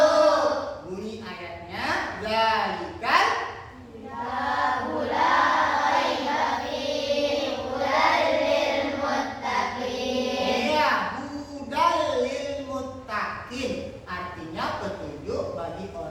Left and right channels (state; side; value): identical; both; correlation 1.00